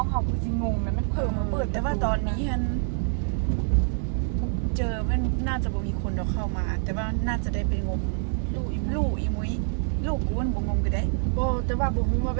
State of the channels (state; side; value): silent; left; 61 dB below the other